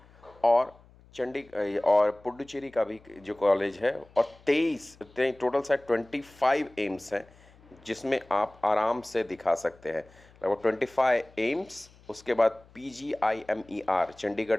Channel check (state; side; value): noise; left; hum, 26 dB below the sound